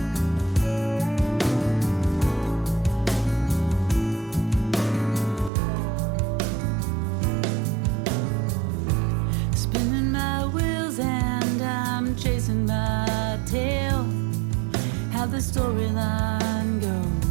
Spinning my wheels and I'm chasing my tail. How the storyline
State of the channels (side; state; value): left; drops out; at 5.5 s